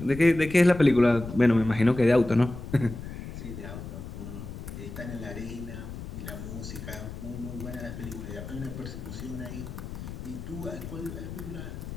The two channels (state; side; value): noise; left; rumble, 10 dB below the sound